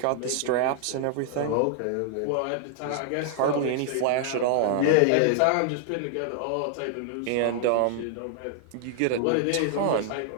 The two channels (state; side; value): different; both; correlation 0.00